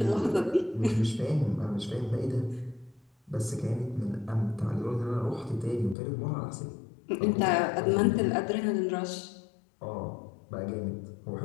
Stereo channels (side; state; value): right; drops out; at 6.0 s